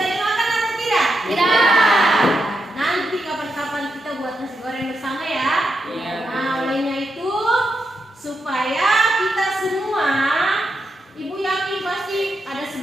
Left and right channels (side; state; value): both; normal; correlation 0.85